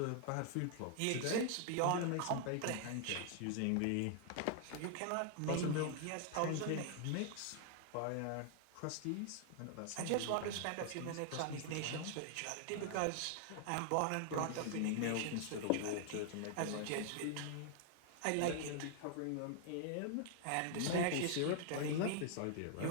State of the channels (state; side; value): different; both; correlation 0.00